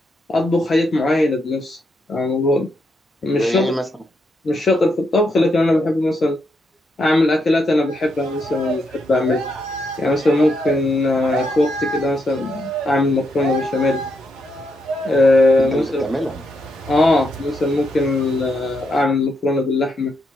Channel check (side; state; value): both; normal; correlation 0.80